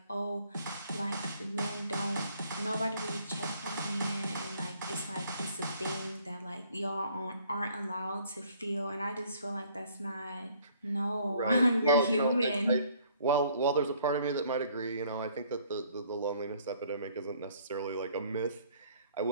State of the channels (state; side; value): inverted; both; correlation -0.61